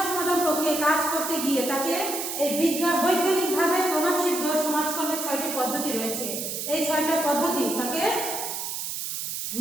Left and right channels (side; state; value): right; noise; hiss, 4 dB below the sound